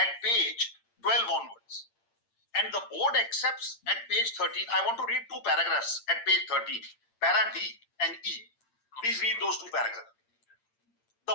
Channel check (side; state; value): right; late; 8.7 ms